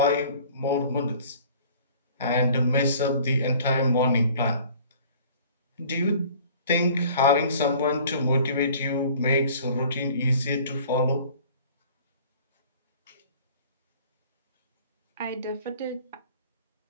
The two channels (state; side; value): inverted; both; correlation -0.49